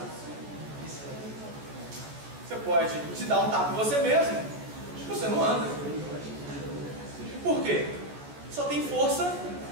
Você pode te dar um tapa em você mesmo, você não anda. Por quê? Só tem força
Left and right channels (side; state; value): left; late; 14 ms